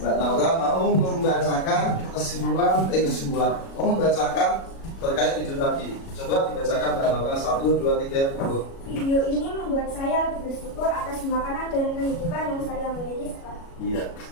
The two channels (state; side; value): late; right; 37 ms